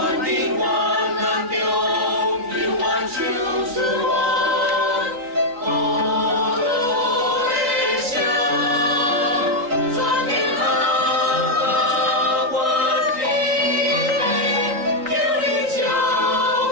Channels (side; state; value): left; late; 3.9 ms